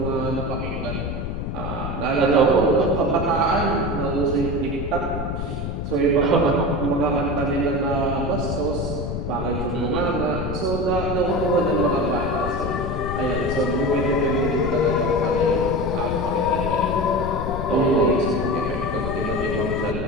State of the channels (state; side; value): noise; left; rumble, 4 dB below the sound